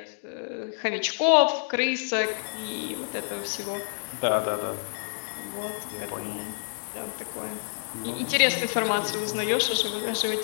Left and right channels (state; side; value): silent; right; digital silence